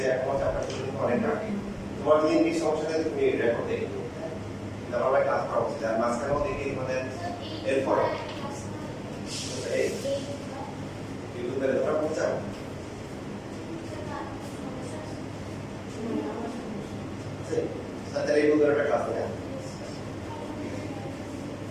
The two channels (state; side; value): identical; both; correlation 1.00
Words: এখন চাপটা শুরু অনেক আগে তোমার যদি ইংলিশ সমস্যা থাকে তুমি রেকর্ড দেখো তারপরে ক্লাস করা উচিত আর মাঝখানেও দেখি তোমাদের এরপরে ইউটিউবে তোমরা পৌঁছাও তাহলে ইউটিউবের একটা ক্লাস নেই